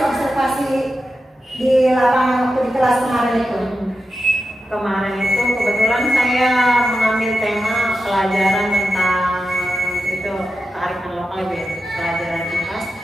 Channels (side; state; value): both; normal; correlation 0.91